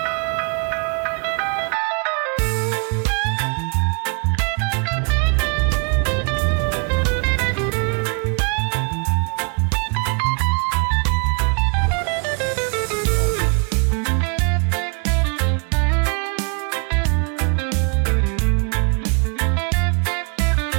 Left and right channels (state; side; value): quieter; left; 36.5 dB